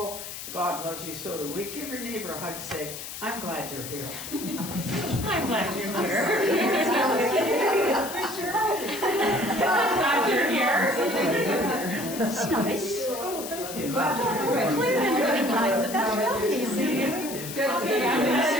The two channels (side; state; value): left; noise; hiss, 9 dB below the sound